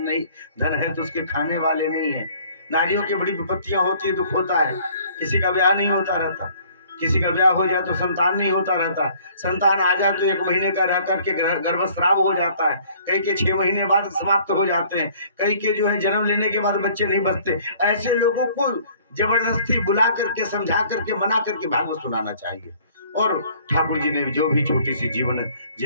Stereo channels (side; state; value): both; inverted; correlation -0.56